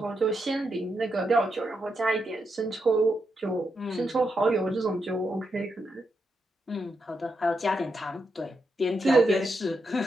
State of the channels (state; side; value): normal; both; correlation 0.83